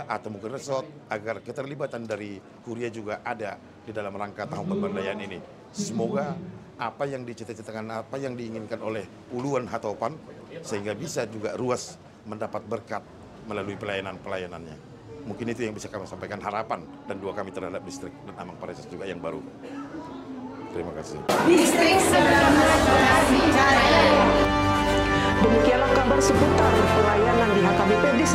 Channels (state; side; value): identical; both; correlation 1.00